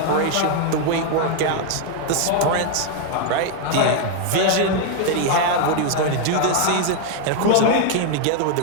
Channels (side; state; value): both; different; correlation 0.00